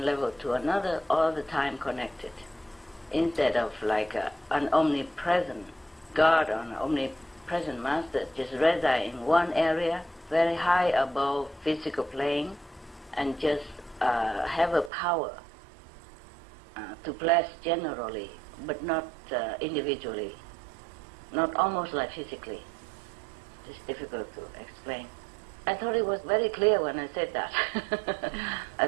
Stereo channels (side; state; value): left; drops out; at 14.9 s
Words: level to another, all the time connected, instead of like an omnipresent God or an omnipresent master just reside in one area, very high above physical plane, and just have a power to bless generally, but not individually, not almost like physically. It's difficult to explain. I thought it was very clear when I said that